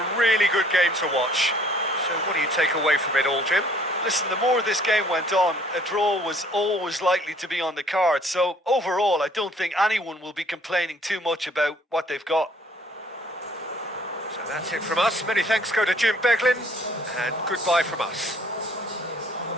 really good game to watch. So what do you take away from it all, Jim? Listen, the more this game went on, a draw was always likely to be on the card. So overall, I don't think anyone will be complaining too much about what they've got. So that's it from us. Many thanks go to Jim Beglin, and goodbye from us.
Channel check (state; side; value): normal; both; correlation 0.59